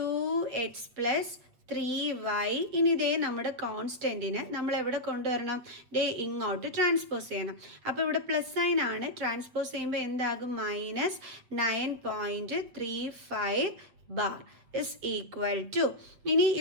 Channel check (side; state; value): left; late; 7.8 ms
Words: + 3y. ഇനി ഇതേ നമ്മുടെ കോൺസ്റ്റൻറ്റിന് നമ്മൾ എവിടെ കൊണ്ടുവരണം? ഇങ്ങോട്ട് ട്രാൻസ്പോസ് ചെയ്യണം. അപ്പോൾ ഇവിടെ പ്ലസ് സൈൻ ആണ്, ട്രാൻസ്പോസ് ചെയ്യുമ്പോൾ എന്താകും? -9.35 ബാർ ഇസ് ഈക്വൽ ടു. ഇനി